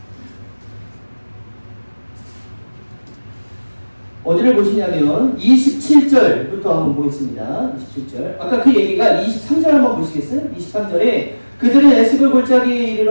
어디를 보시냐면 27절부터 한번 보겠습니다. 27절. 아까 그 얘기가 23절 한번 보시겠어요? 23절에 그들은 에스골 골짜기에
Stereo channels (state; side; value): inverted; both; correlation -1.00